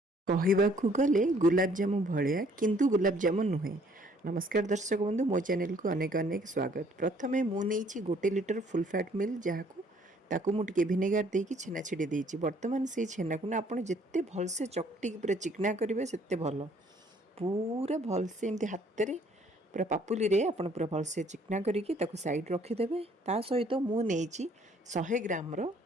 कहवाकू गले गुलाबजामु भलिया किंतु गुलाबजामुन नुहे। नमस्कार दर्शक बंधु, मो चैनल को अनेक अनेक स्वागत। प्रथमे मु नहीं 1 लिटर फुल फैट मिल जहाँ ताकू मु टिके भिनेगार देकी छेना छिड़ी देइछि। वर्तमान से छेना को ना आपण जेते भलसे चकटी पूरा चिकना करिवे सेते भल। पूरा भलसे एमती हाथ रे पूरा पापुली रे आपण पूरा भलसे चिकना करिकी ताकू साइड रखी देबे। ता सहित मु नेइछि 100 ग्राम रो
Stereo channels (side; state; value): both; normal; correlation 0.61